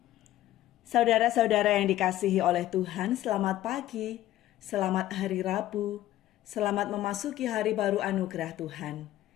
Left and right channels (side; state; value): right; quieter; 14.2 dB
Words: Saudara-saudara yang dikasihi oleh Tuhan, selamat pagi, selamat hari Rabu, selamat memasuki hari baru anugerah Tuhan.